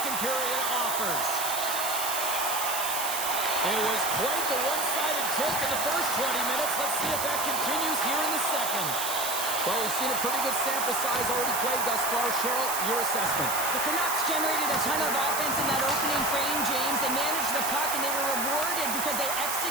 period offers. It was quite the one-sided tilt in the first 20 minutes. Let's see if that continues here in the second. Well, we've seen a pretty good sample size already played thus far. Cheryl, your assessment. The Canucks generated a ton of offense in that opening frame, James. They managed the puck, and they were rewarded because they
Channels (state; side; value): noise; right; hiss, 2 dB below the sound